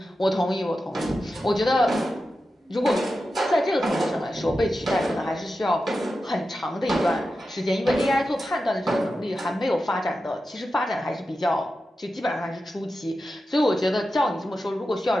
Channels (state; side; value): normal; both; correlation 0.91